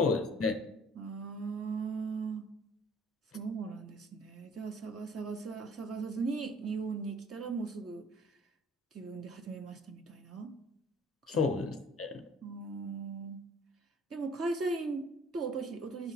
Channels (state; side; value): normal; both; correlation 0.54